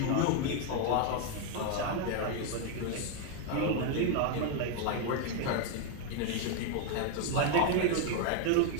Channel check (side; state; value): both; different; correlation 0.01